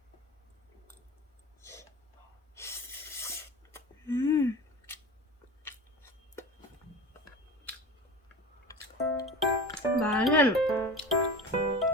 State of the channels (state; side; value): normal; both; correlation 0.32